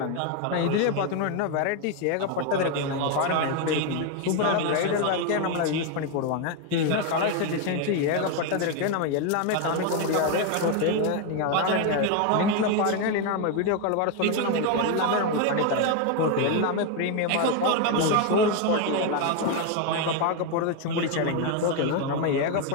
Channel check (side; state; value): both; different; correlation 0.01